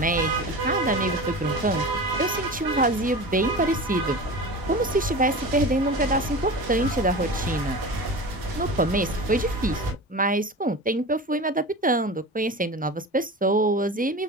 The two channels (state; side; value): normal; both; correlation 0.31